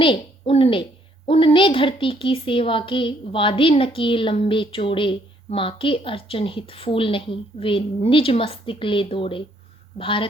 उनने उनने धरती की सेवा के वादे न किए लंबे चौड़े। माँ के अर्चन हित फूल नहीं वे निज मस्तिष्क ले दौड़े।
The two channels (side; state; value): both; normal; correlation 0.67